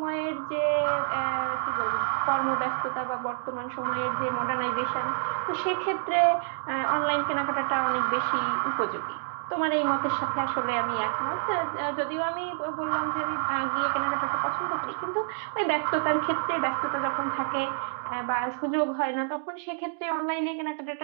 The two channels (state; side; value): silent; left; digital silence